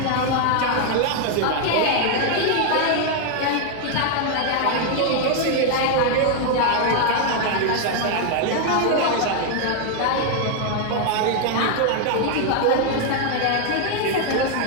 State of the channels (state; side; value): different; both; correlation 0.00